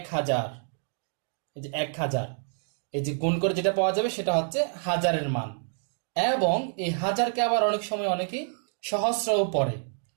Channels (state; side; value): silent; left; 58 dB below the other